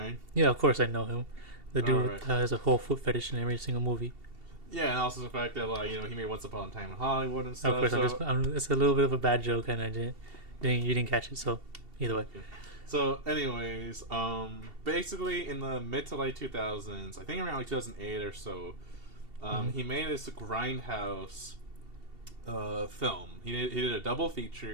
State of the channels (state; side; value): late; left; 2.7 ms